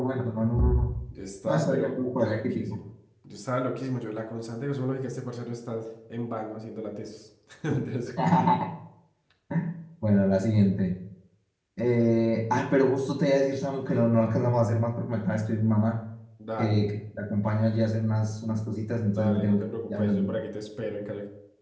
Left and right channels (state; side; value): identical; both; correlation 1.00